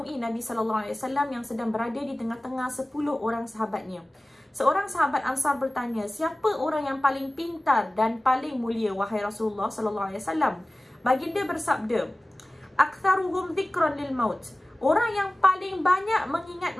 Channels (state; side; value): normal; both; correlation 0.97